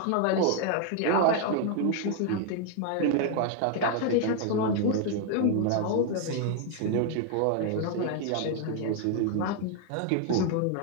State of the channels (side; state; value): both; different; correlation 0.00